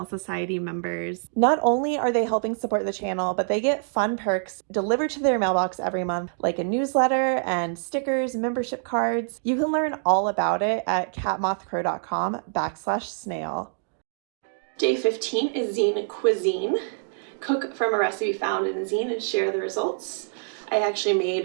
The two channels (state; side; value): silent; left; digital silence